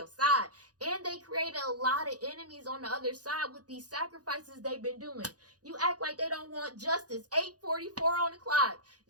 side. And they created a lot of enemies on the other side with these sacrifices they've been doing. You act like they don't want justice. 8:44 on the clock.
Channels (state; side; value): late; left; 0.68 ms